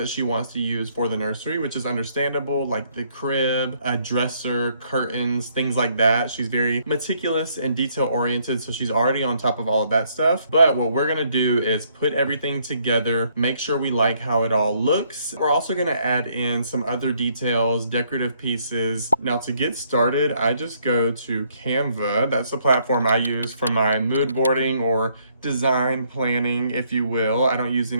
she wants to use for the nursery, which is understandable, like the crib, a dresser, curtains, things like that. She's very meticulous and detail oriented, so she's already on top of all of that stuff. But what we're gonna do is put everything together, make sure we like how it all looks. We're also going to add in some other details, decorative pieces. Now, to get started, I just go to Canva. That's the platform I use for my mood boarding or design planning, if you will. I don't use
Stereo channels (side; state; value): both; inverted; correlation -0.68